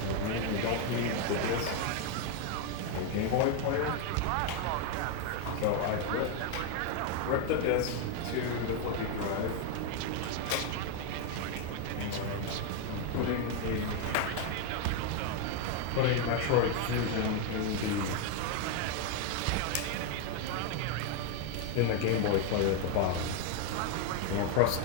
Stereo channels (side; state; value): both; different; correlation 0.01